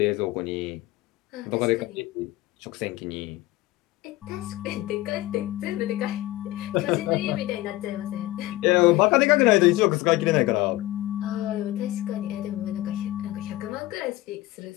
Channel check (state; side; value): quieter; right; 17.5 dB